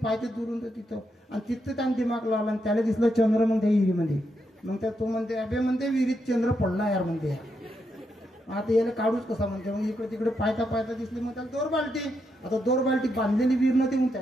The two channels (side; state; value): both; normal; correlation 0.81